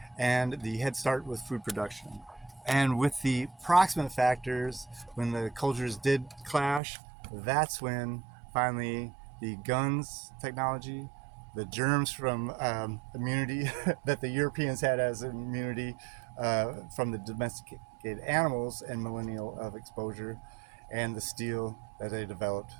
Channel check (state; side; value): drops out; left; at 6.8 s